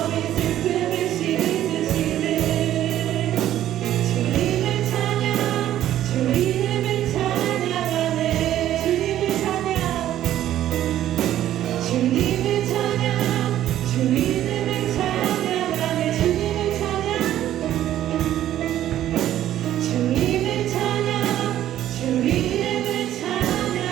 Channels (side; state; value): left; quieter; 12.3 dB